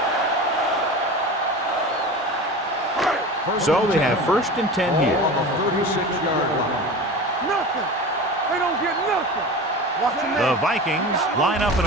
So they have first and 10 here. Ball on the 36-yard line. Nothing. They don't get nothing. Watch the The man. Vikings line up in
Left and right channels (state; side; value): normal; both; correlation 0.32